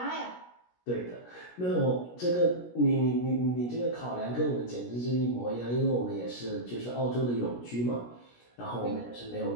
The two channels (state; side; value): late; right; 17 ms